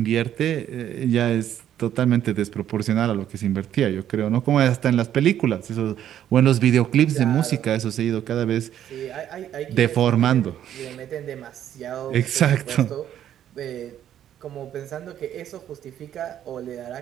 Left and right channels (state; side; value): quieter; left; 10.7 dB